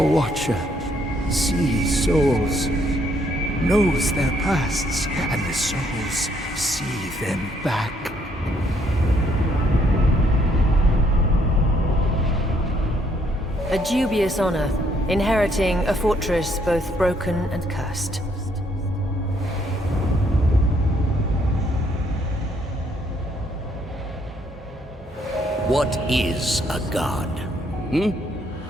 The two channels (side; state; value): both; normal; correlation 0.69